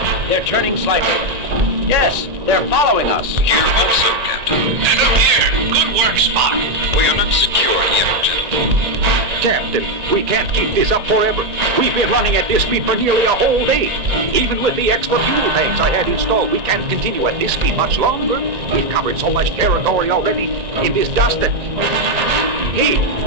They're turning slightly. Yes, they're following us. Here also, Captain. And up here. Good work, Spock. We are not secure yet, gentlemen. Captain, we can't keep this up forever. We've been running at this speed for nearly a whole day. Even with the extra fuel tanks I had installed, we can't continue at this speed much longer. We've covered so much territory already in this dust that... Hey,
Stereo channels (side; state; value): left; late; 1.8 ms